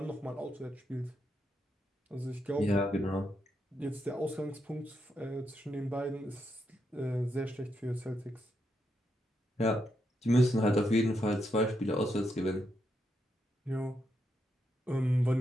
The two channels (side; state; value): both; normal; correlation 0.82